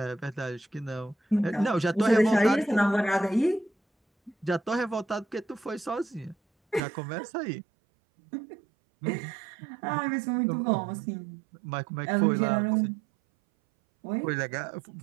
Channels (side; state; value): left; drops out; at 6.8 s